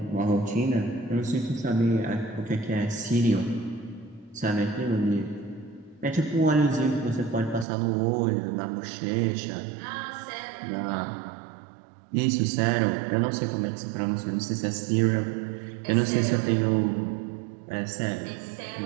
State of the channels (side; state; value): left; drops out; at 7.7 s